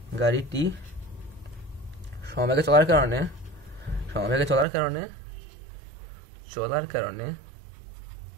সমবেগে চলার কারণে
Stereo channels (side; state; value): left; drops out; at 4.7 s